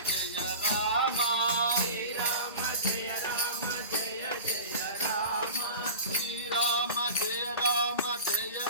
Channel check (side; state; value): both; inverted; correlation -0.34